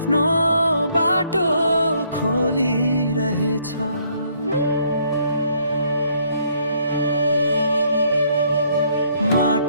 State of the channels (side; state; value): both; inverted; correlation -0.67